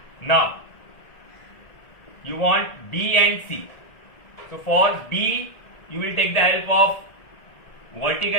Now you want B and C. So for B you will take the help of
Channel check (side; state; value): right; late; 1.7 ms